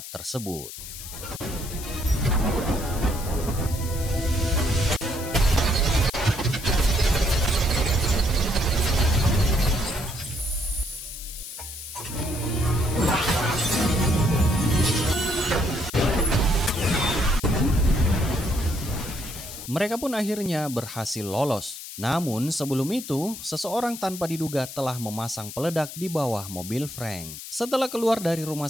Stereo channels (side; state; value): left; noise; hiss, 11 dB below the sound